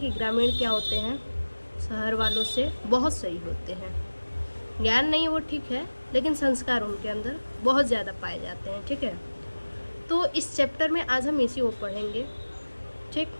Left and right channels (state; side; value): inverted; both; correlation -1.00